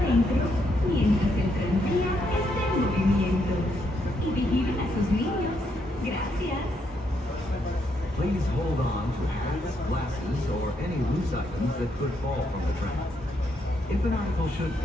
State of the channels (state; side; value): normal; both; correlation 0.76